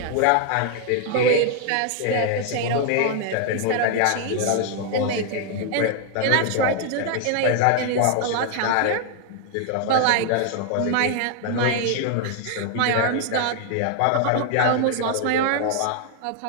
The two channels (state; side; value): different; both; correlation 0.00